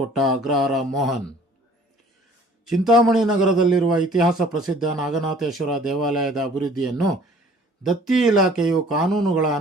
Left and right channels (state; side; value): normal; both; correlation 0.53